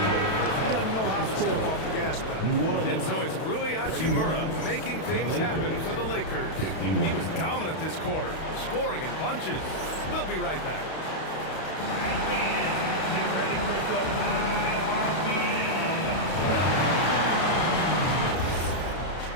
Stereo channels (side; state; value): right; late; 32 ms